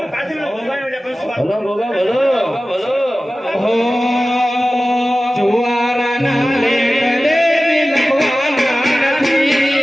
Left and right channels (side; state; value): both; normal; correlation 0.96